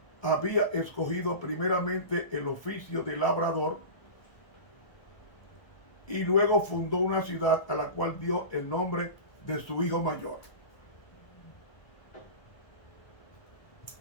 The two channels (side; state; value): right; late; 1.2 ms